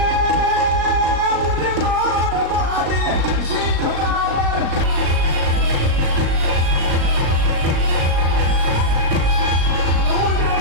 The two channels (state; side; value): late; left; 37 ms